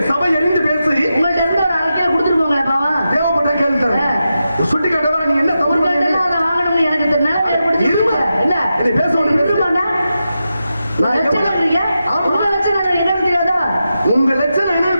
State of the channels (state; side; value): inverted; both; correlation -0.89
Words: சபை எரிந்து பேசி உங்கள்ட்ட இருந்து ஒரு அரைக்கில கொடுத்துட்டு போங்களேன். பாவா தேவைப்பட்ட கேள்வி தரேன். சுட்டி காட்டவா நீ என்ன தவறு வாங்கணும்னு எனக்கு நிலைமை ஏற்படுத்தி இல்ல நீ பேச உங்க லட்சணம் என்ன